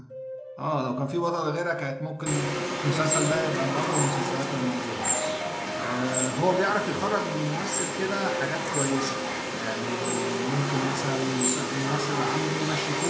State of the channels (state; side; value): identical; both; correlation 1.00